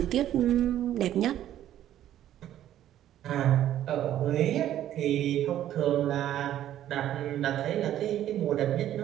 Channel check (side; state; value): left; quieter; 12.0 dB